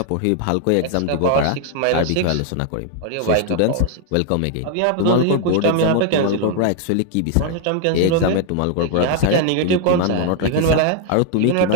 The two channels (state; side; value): different; both; correlation 0.00